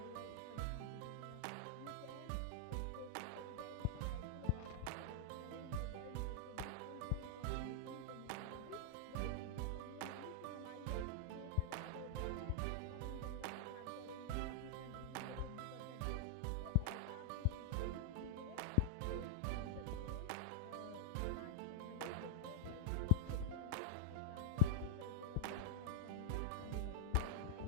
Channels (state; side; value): different; both; correlation -0.01